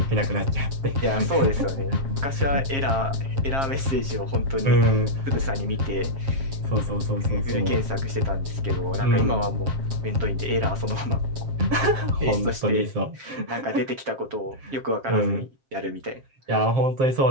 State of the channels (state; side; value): late; left; 7.5 ms